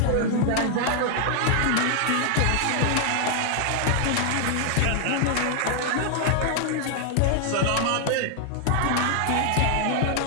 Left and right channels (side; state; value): both; different; correlation 0.00